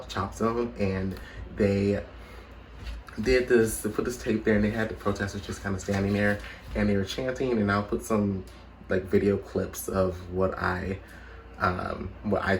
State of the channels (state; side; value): identical; both; correlation 1.00